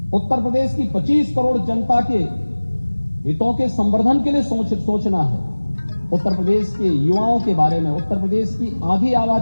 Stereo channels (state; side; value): inverted; both; correlation -1.00